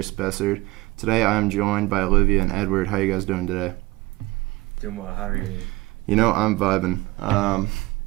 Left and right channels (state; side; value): quieter; left; 20.7 dB